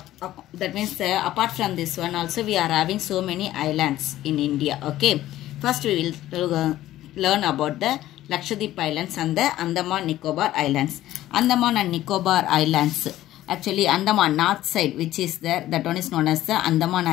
means apart from this one also we are having so many islands in India. Okay. First we will learn about the Lakshadweep Islands and the Andaman Nicobar Islands. Andaman and Nicobar Islands. Actually Andaman north side which is there, that one is known as the Andaman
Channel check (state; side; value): quieter; right; 14.3 dB